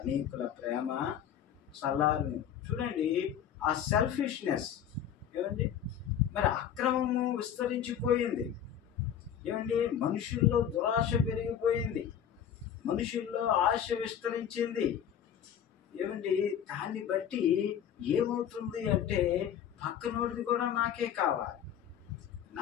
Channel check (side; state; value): right; quieter; 9.3 dB